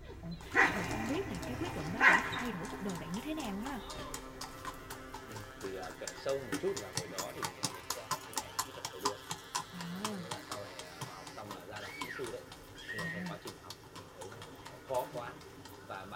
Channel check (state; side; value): identical; both; correlation 1.00